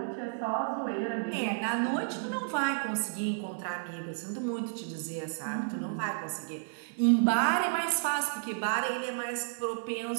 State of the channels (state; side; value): silent; left; digital silence